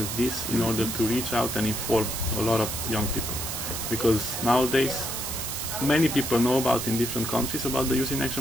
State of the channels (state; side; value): noise; right; hiss, 4 dB below the sound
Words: this in order to reach out and inform a lot of young people. Because nowadays many people know about in different countries about the Youth in